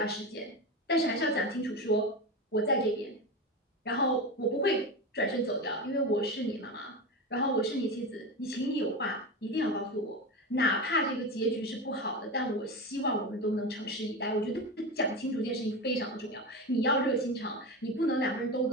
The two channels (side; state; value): both; normal; correlation 0.22